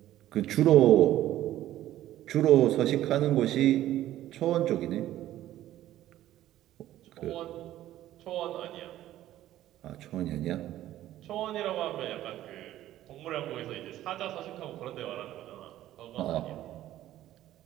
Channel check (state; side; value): quieter; left; 13.6 dB